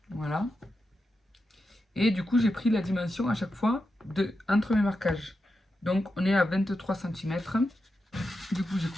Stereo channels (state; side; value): normal; both; correlation 0.88